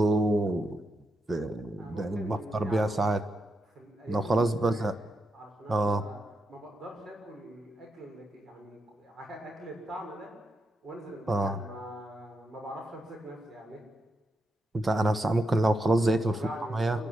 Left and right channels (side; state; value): both; normal; correlation 0.84